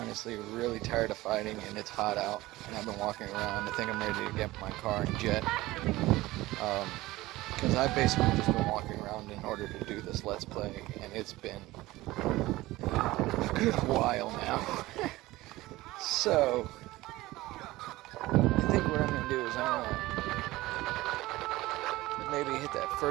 really tired of fighting and it's hot out and I've been walking around. I think I'm ready to get my car and jet. Because I've basically just been walking around in order to do this Let's Play and it's been a good while now. So, I think what I'm gonna do is I'm gonna maybe hit that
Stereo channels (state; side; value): quieter; left; 18.5 dB